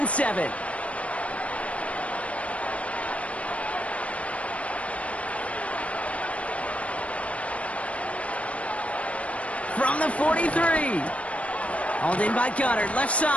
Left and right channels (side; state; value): right; late; 0.064 ms